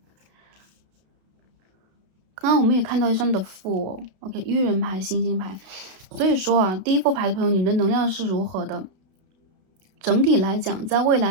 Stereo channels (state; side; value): late; left; 32 ms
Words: 刚刚我们也看到一张的负哦 ，OK， 愚人牌、星星牌，所以说啊，第一副牌的朋友，你们的能量是如何的？整体来讲，在未